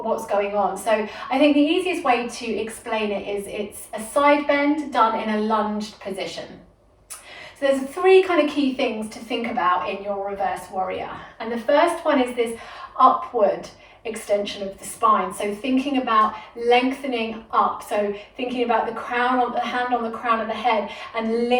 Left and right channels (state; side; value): identical; both; correlation 1.00